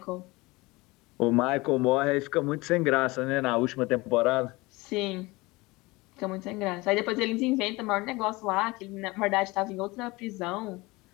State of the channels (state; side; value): quieter; right; 22.6 dB